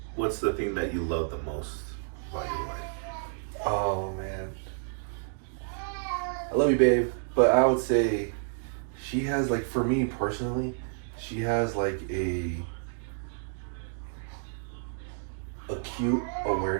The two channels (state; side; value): silent; left; digital silence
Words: What's the thing that you love the most about your wife? Oh man, I love you, babe. But I would say she has like, for me personally, she has like a acute